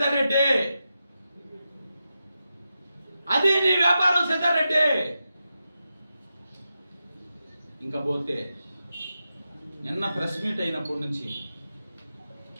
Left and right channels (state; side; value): inverted; both; correlation -0.89